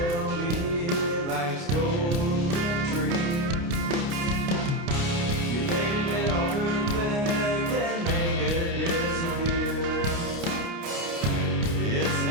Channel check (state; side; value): late; left; 29 ms